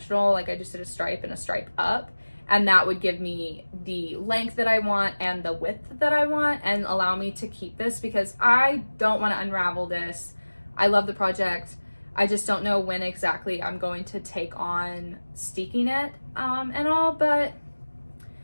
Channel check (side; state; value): both; inverted; correlation -1.00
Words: Like I just did a stripe and a stripe up, and that would give me the length that I want and the width that I want and allow me to keep this, because I don't want to unravel this. I love the project. I just don't know when exactly I'm going to take on steeking it and all, but